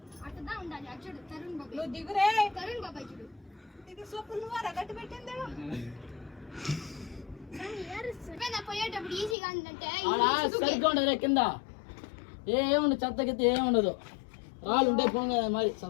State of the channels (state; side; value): drops out; right; at 9.3 s